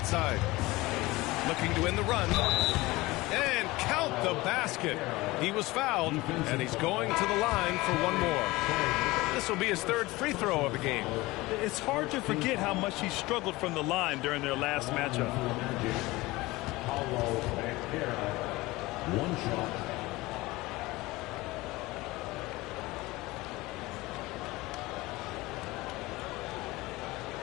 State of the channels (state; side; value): quieter; right; 20.4 dB